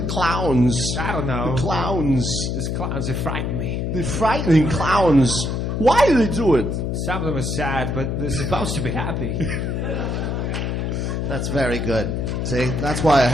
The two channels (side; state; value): left; noise; hum, 1 dB below the sound